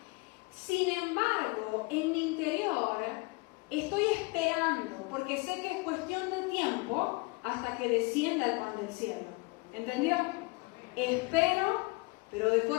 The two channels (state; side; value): quieter; right; 26.6 dB